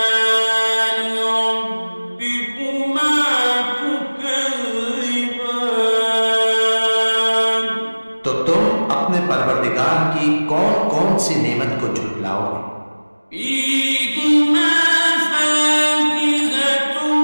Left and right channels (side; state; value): both; inverted; correlation -1.00